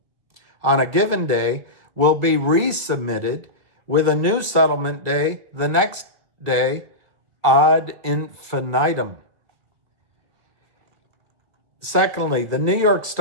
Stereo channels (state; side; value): late; left; 1.6 ms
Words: on a given day will be resubmitted with a new settlement day the next day ad infinitum. Secondly, the New York